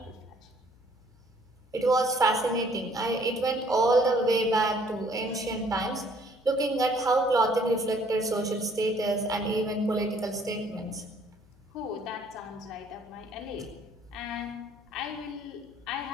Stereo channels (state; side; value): noise; left; hum, 28 dB below the sound